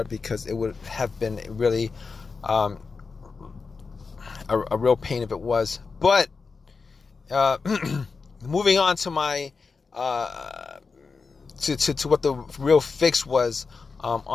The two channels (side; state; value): right; quieter; 4.7 dB